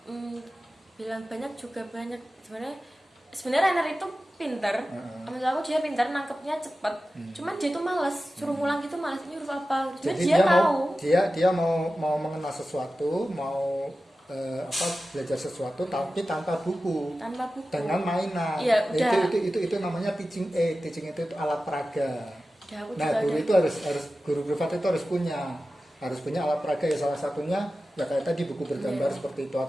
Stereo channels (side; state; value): both; normal; correlation 0.94